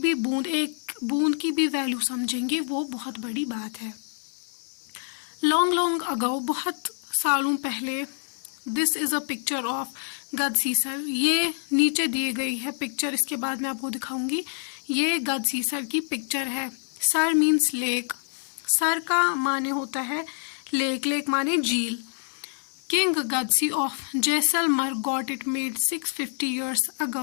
बूंद की भी वैल्यू समझेंगे, वो बहुत बड़ी बात है। लॉन्ग अगो, बहुत सालों पहले, this is a picture of Gadsisar. ये नीचे दी गई है पिक्चर, इसके बाद मैं आपको दिखाऊंगी। ये गदसीसर की पिक्चर है। सर मीन्स लेक, सर का माने होता है लेक, लेक माने झील। King Gadsi of Jaisalmer got it made 650 years ago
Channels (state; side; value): silent; right; 61 dB below the other